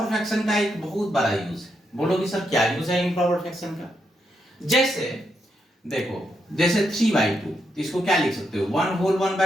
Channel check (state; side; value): normal; both; correlation 0.81